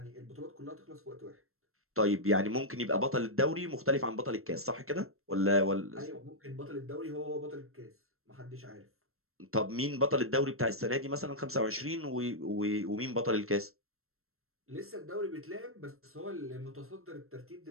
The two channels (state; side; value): late; left; 0.62 ms